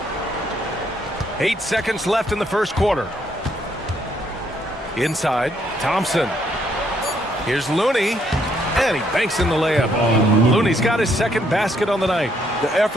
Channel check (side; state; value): both; normal; correlation 0.71